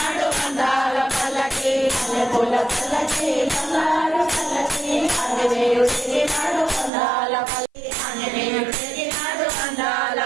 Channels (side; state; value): left; drops out; at 6.9 s